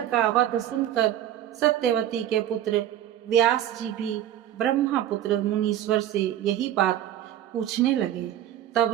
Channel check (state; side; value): quieter; left; 11.7 dB